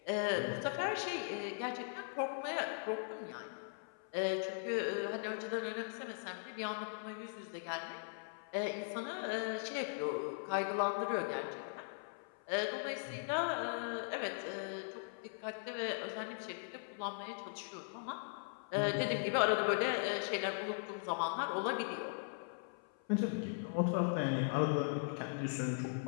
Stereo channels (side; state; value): right; silent; 51 dB below the other